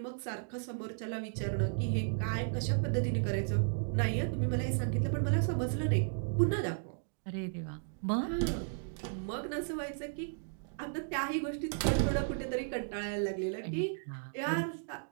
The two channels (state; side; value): silent; left; digital silence